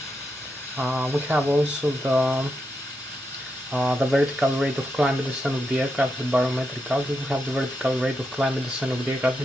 We have also the vertical rate of climb and descent of the aircraft, the barometric altitude. We have the vertical rate of climb and descent of the aircraft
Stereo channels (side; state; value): both; normal; correlation 0.84